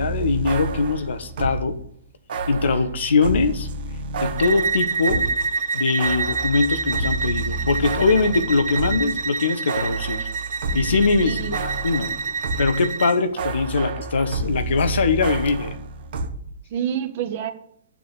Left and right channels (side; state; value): both; inverted; correlation -0.67